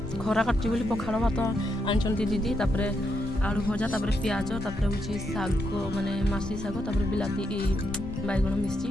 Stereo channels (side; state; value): both; normal; correlation 0.80